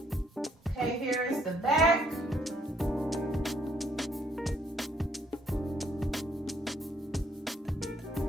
Okay, here is the back.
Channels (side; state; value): both; normal; correlation 0.68